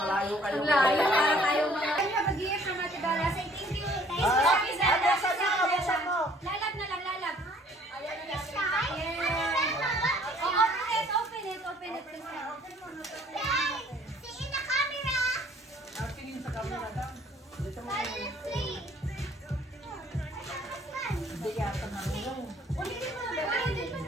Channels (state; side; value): normal; both; correlation 0.57